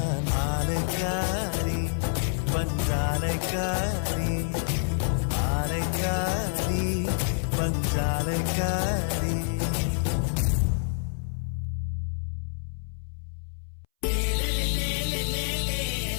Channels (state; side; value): silent; right; 60 dB below the other